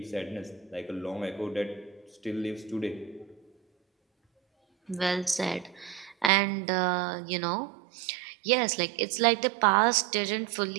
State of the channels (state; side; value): drops out; left; at 6.3 s